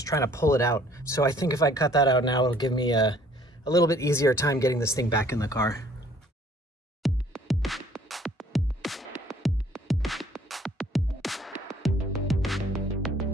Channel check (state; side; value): normal; both; correlation 0.58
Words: trying to pull it out. So I think if I cut that out now, it'll give me a little bit easier time getting this thing back in the car.